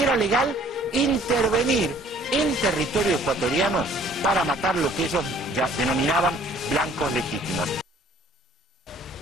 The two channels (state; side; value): normal; both; correlation 0.57